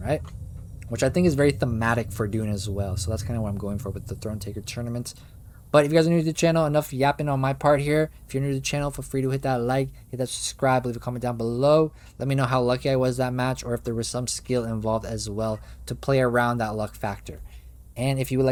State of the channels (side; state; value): both; identical; correlation 1.00